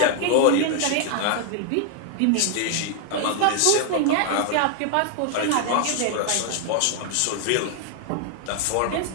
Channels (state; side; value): different; both; correlation 0.00